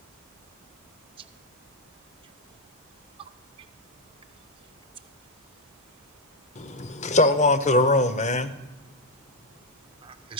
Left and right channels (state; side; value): normal; both; correlation 0.02